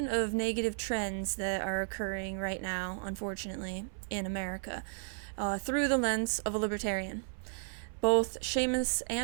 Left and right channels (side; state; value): left; silent; 55 dB below the other